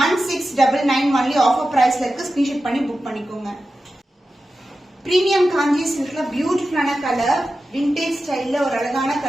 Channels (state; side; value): normal; both; correlation 0.92